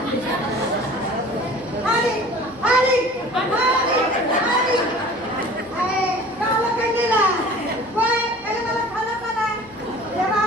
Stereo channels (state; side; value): noise; left; hum, 26 dB below the sound